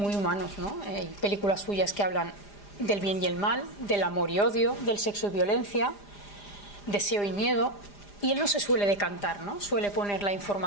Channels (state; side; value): late; right; 4.9 ms